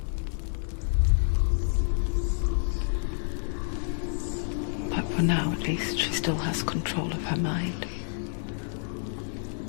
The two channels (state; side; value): silent; right; digital silence